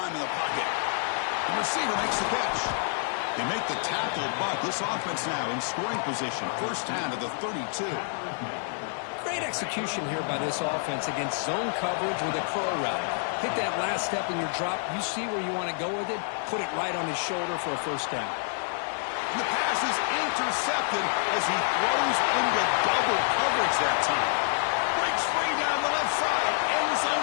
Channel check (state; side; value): silent; right; digital silence